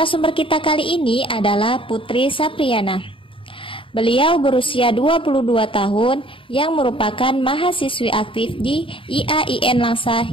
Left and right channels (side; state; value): right; late; 0.25 ms